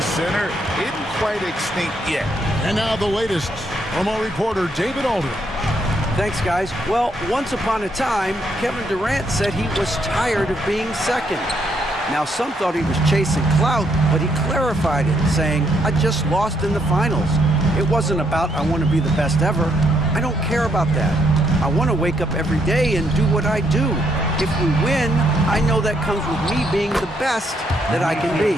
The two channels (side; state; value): both; normal; correlation 0.74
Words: center isn't quite extinct yet. And now the latest from our reporter, David Alder. Thanks, guys. Well, once upon a time, Kevin Durant said he was tired of being second. Now, some thought he was chasing clout, but he clarified it, saying, I just lost in the finals. It wasn't about, I want to be the best ever. I don't care about that. I want to wake up every day and do what I do. If we win, I know that comes with me being the best that I can be.